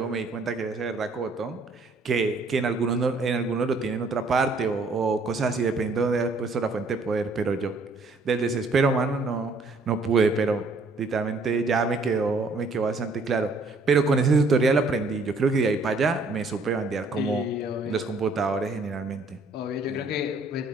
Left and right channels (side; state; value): left; quieter; 3.3 dB